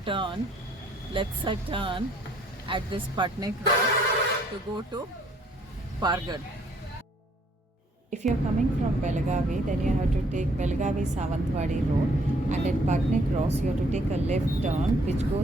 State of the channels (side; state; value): both; normal; correlation 0.63